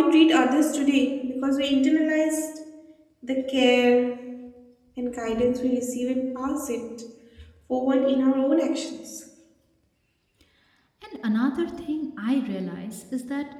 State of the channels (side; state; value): both; identical; correlation 1.00